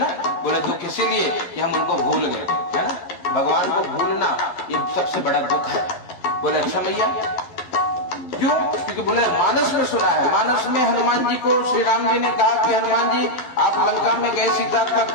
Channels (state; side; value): late; right; 11 ms